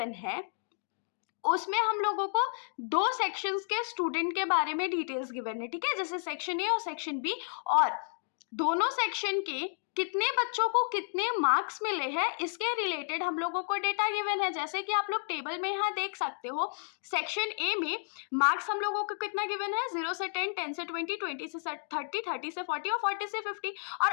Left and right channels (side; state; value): right; silent; digital silence